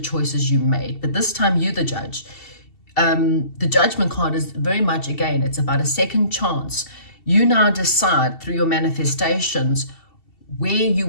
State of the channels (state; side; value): late; right; 2.7 ms